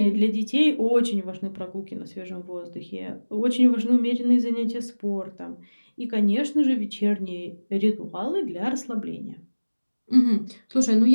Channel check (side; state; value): both; inverted; correlation -1.00